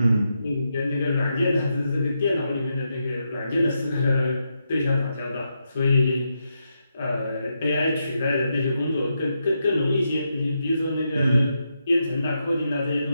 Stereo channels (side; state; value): both; inverted; correlation -0.84